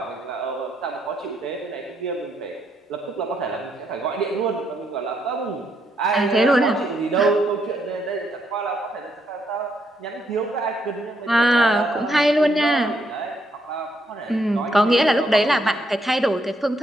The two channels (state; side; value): normal; both; correlation 0.75